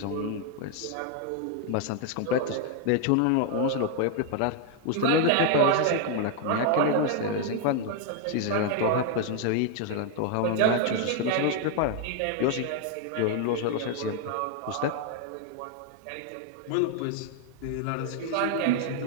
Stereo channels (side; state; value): both; different; correlation 0.00